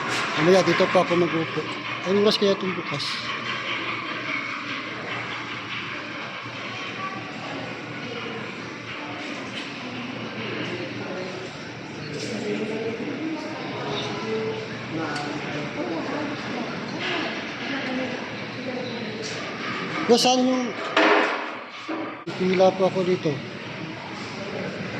Mamaya dito pa ako mag-upo. Anong oras kaya itong bukas? Saan yung pila po ako dito?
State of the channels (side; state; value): both; identical; correlation 1.00